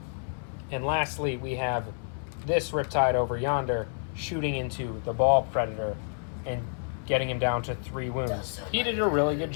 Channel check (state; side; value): silent; right; 59 dB below the other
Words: And lastly, we have this Riptide over yonder shooting into the Ball Predator and getting him down to 3 wounds. He did a really good